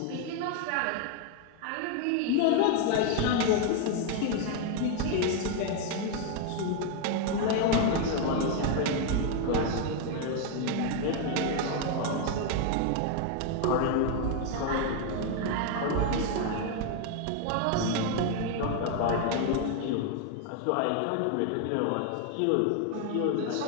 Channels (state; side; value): different; both; correlation 0.01